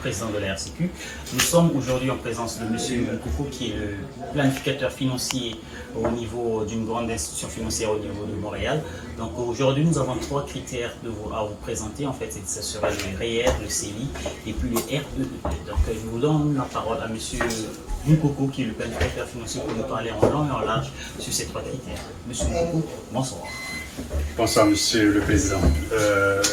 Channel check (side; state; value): both; identical; correlation 1.00